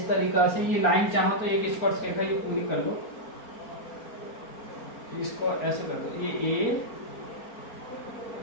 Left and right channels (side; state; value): right; late; 4.4 ms